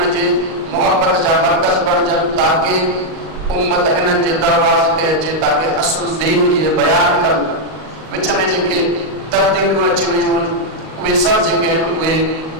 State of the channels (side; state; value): left; late; 38 ms